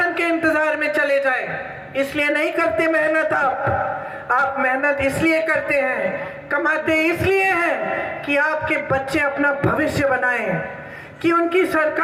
के इंतजार में चले जाए, इसलिए नहीं करते मेहनत। आप मेहनत इसलिए करते हैं, कमाते इसलिए हैं कि आपके बच्चे अपना भविष्य बनाएं, कि उनकी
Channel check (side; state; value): both; identical; correlation 1.00